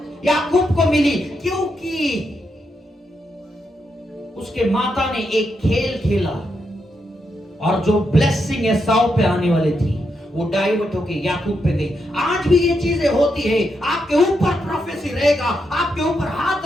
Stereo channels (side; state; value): both; normal; correlation 0.82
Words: याकूब को मिली। क्योंकि उसके माता ने एक खेल खेला और जो ब्लेसिंग एसाव पे आने वाली थी वो डाइवर्ट होके याकूब पे गई। आज भी ये चीजें होती है। आपके ऊपर प्रोफेसी रहेगा, आपके ऊपर हाथ